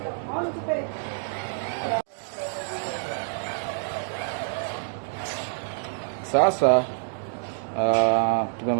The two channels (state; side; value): silent; left; digital silence